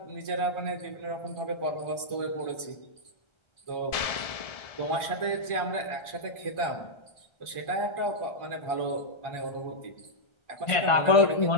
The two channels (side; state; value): right; late; 1.3 ms